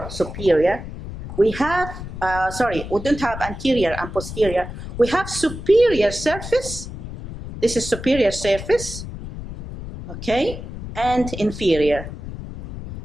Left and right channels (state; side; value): noise; left; rumble, 10 dB below the sound